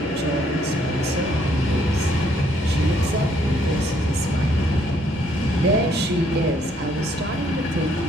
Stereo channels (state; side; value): normal; both; correlation 0.68